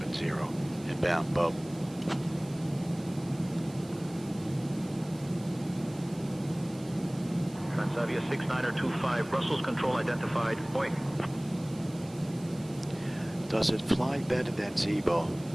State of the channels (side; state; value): right; noise; hiss, 21 dB below the sound